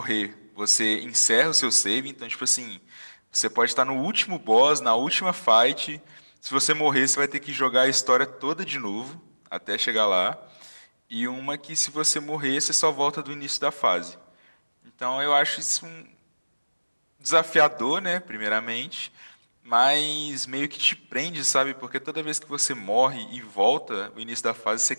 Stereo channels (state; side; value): inverted; both; correlation -1.00